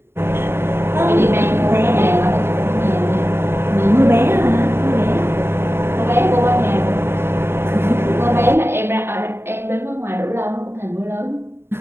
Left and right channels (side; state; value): left; late; 0.11 ms